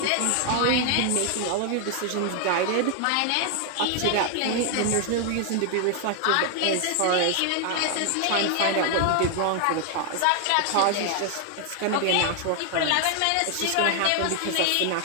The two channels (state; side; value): different; both; correlation 0.00